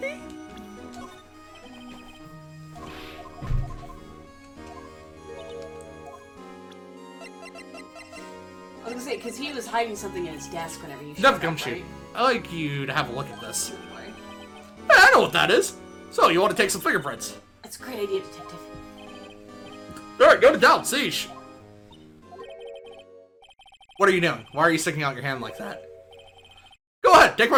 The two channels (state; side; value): identical; both; correlation 1.00